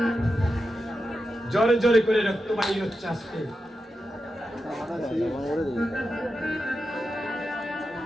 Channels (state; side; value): normal; both; correlation 0.89